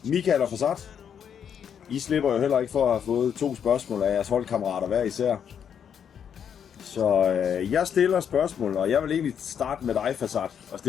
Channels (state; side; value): quieter; right; 8.1 dB